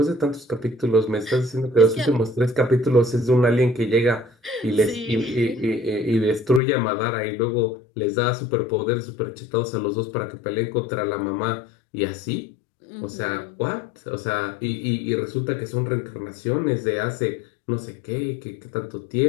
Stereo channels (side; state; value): right; drops out; at 6.6 s